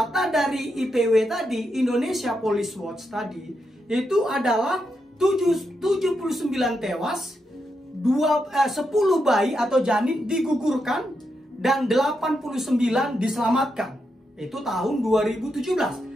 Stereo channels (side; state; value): both; normal; correlation 0.84